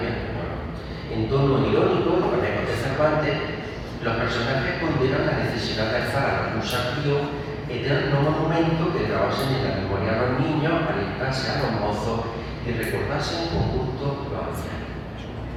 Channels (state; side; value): identical; both; correlation 1.00